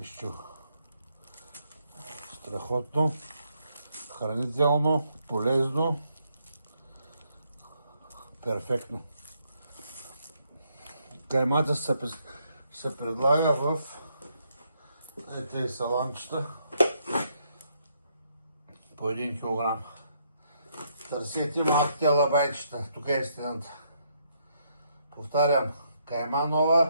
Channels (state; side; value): inverted; both; correlation -0.74